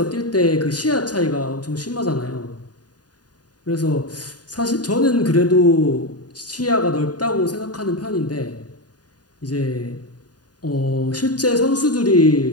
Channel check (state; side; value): late; right; 0.69 ms